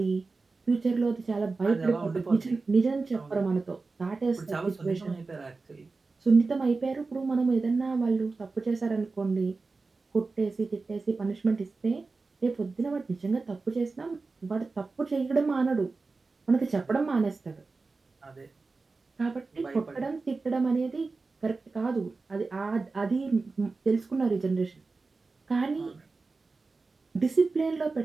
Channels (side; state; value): left; quieter; 3.9 dB